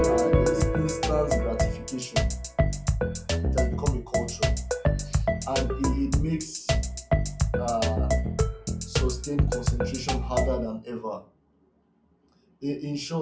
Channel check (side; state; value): both; identical; correlation 1.00